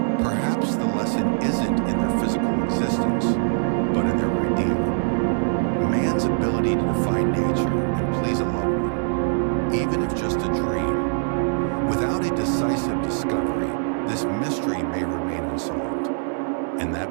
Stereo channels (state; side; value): silent; left; digital silence